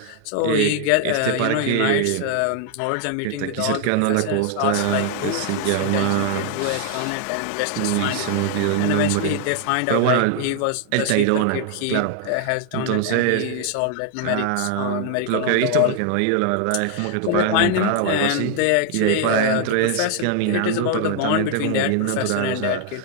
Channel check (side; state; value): both; different; correlation 0.00